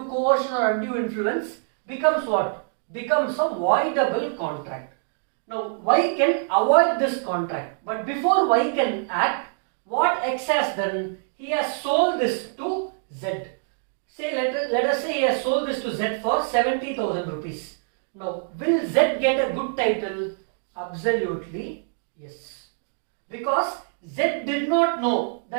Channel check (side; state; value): left; silent; digital silence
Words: coercion or undue influence becomes what? Becomes a voidable contract. Now Y can avoid this contract, but before Y can act, what X has done? He has sold this to Z. Say let us say he has sold this to Z for 70,000 rupees. Now will Z get a good title? Absolutely yes. Because Z did not know